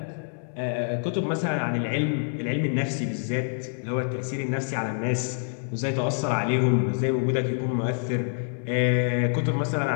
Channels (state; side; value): silent; right; 61 dB below the other